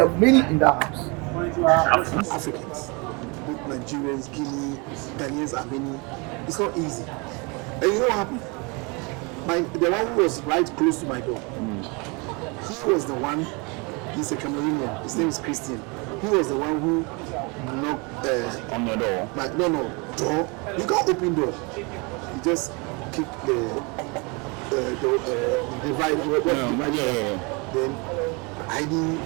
many in that house. Africans, both Nigerians, Guinea, Ghanaians, are many. It's not easy. And you know what happened? The one who was right close to my door, he was the one. He's a Cameroonian. His name is Christian. He was the one who knocked on your door. Door. You can't open door. You just kick the divide. Then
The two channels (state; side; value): quieter; left; 29.6 dB